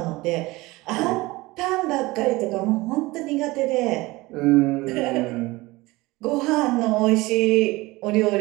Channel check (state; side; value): quieter; left; 21.0 dB